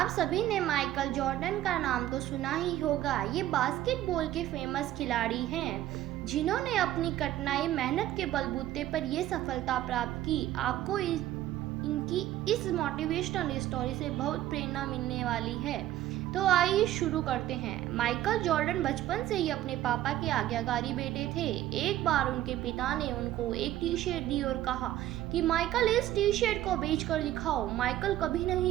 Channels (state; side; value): quieter; left; 13.6 dB